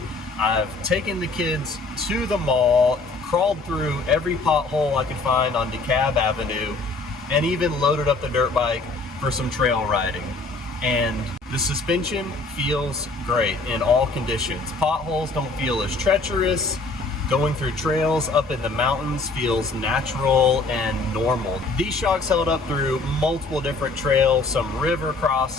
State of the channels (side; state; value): right; quieter; 3.6 dB